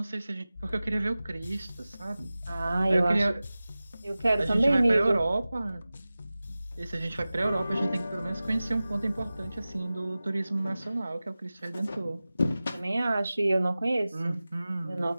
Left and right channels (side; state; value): both; inverted; correlation -0.97